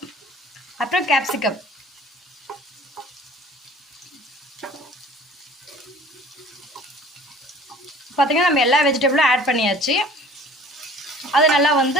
அப்புறம் கேப்சிகம். பார்த்தீங்கன்னா நம்ம எல்லா வெஜிடபிளும் ஆட் பண்ணியாச்சு. அது நல்லா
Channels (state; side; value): normal; both; correlation 0.48